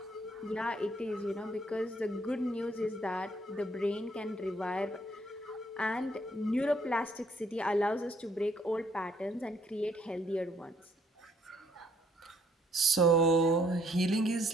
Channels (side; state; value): both; normal; correlation 0.66